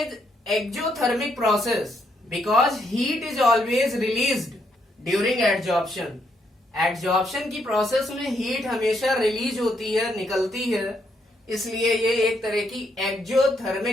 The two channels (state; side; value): normal; both; correlation 0.75